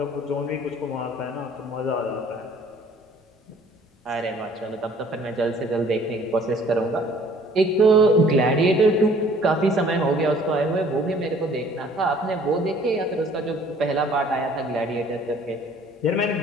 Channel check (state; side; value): normal; both; correlation 0.55